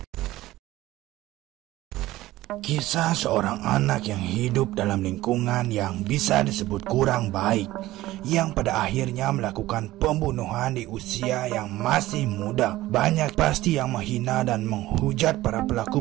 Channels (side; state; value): left; quieter; 16.6 dB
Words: Kisah seorang anak yang hidup dalam lingkungan yang bisa disebut kurang baik, yang pada akhirnya melakukan pembunuhan di usia yang masih muda. Banyak pasti yang menghina dan menghujat para pelaku